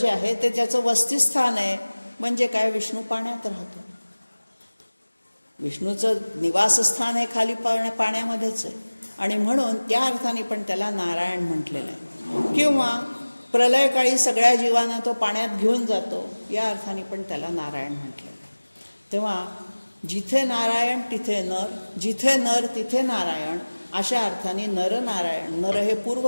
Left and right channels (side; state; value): both; inverted; correlation -1.00